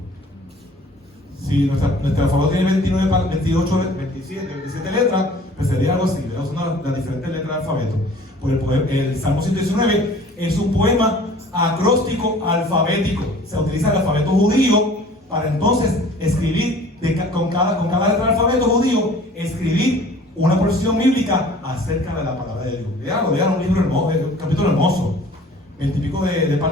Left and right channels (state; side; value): normal; both; correlation 0.49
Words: Si nuestra alfabeto tiene 29, 28, 27 letras, pues sería algo así. Son las diferentes letras del alfabeto. Pues el Salmo 119 es un poema acróstico alfabético. Se utiliza el alfabeto judío para entonces escribir con cada letra del alfabeto judío, escribir una porción bíblica acerca de la palabra de Dios. Lean un libro hermoso, un capítulo hermoso. 20 y pico de